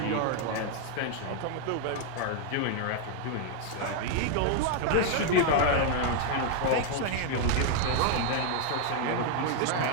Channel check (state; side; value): different; both; correlation 0.00